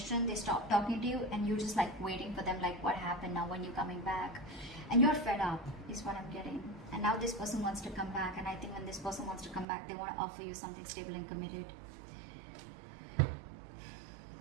They stop talking to you and you're just like waiting for them, like, what happened now? When you're coming back? And you're fed up is what I'm getting. And now this person wants to come back, and I think when this person wants to come back, they want to offer you something stable and committed.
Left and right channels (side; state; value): left; drops out; at 9.7 s